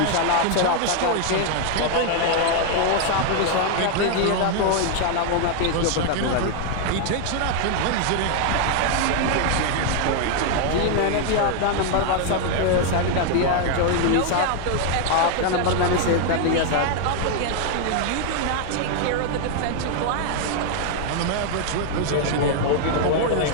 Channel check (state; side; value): different; both; correlation 0.00